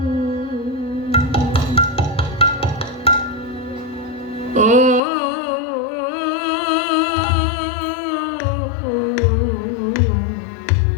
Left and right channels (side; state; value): right; drops out; at 5.0 s